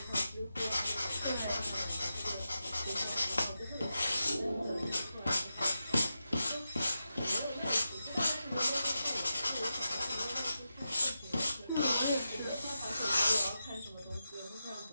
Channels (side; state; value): both; inverted; correlation -0.89